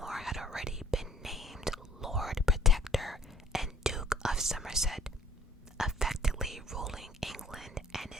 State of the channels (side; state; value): both; normal; correlation 0.57